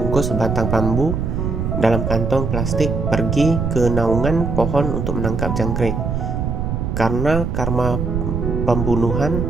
sebatang bambu dalam kantong plastik pergi ke naungan pohon untuk menangkap jangkrik. Karena karma pembunuhan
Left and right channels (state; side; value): noise; right; rumble, 1 dB below the sound